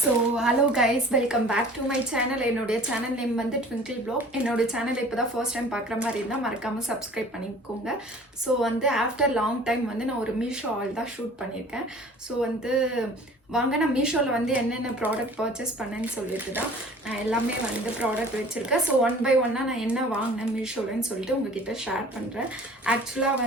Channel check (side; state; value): both; normal; correlation 0.47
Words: So hello guys, welcome back to my channel. என்னுடைய சேனல் நேம் வந்து ட்விங்கிள் ப்ளாக். என்னோட சேனலை இப்போ தான் ஃபர்ஸ்ட் டைம் பார்க்குற மாதிரி இருந்தால் மறக்காமல் சப்ஸ்கிரைப் பண்ணிக்கோங்க. ஸோ வந்து ஆஃப்டர் லாங் டைம் வந்து நான் ஒரு மீஷோ ஆல் தான் ஷூட் பண்ணியிருக்கேன். ஸோ வந்து வாங்க நான் மீஷோவில் வந்து என்னென்ன ப்ராடக்ட் பர்ச்சேஸ் பண்ணேன்னு சொல்லிட்டு தான் நான் எல்லாமே வந்து ப்ராடக்ட் வச்சுருக்கேன். ஸோ ஒன் பை ஒன்னாக நான் என்ன வாங்கினேன் மீஷோலன்னு சொல்லிட்டு உங்ககிட்ட ஷேர் பண்ணுறேன். ஆக்சுவலாக